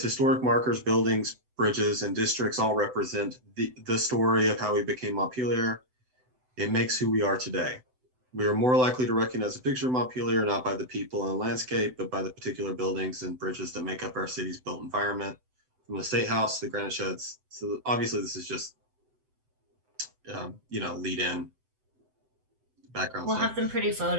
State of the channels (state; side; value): late; left; 7.9 ms